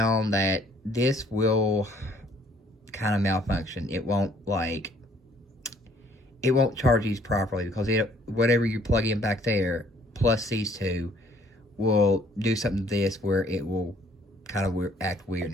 that this will kind of malfunction. It won't charge these properly because whatever you plug in back there plus these two will do something to this where it will kind of act weird and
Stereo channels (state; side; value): normal; both; correlation 0.61